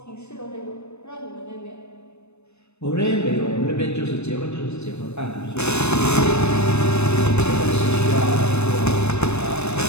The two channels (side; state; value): right; late; 0.81 ms